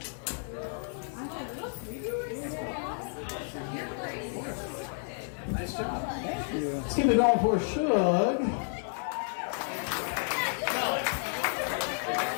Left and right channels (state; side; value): silent; right; 57 dB below the other